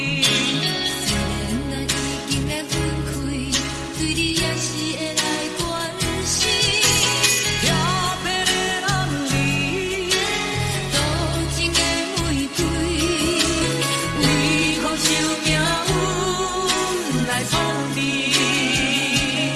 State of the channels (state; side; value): identical; both; correlation 1.00